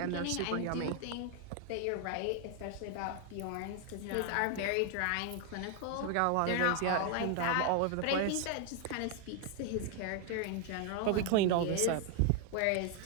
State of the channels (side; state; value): both; different; correlation 0.00